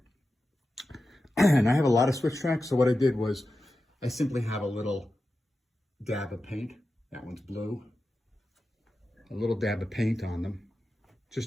And I have a lot of switch tracks, so what I did was I simply have a little dab of paint. That one's blue. A little dab of paint on them,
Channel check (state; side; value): normal; both; correlation 0.92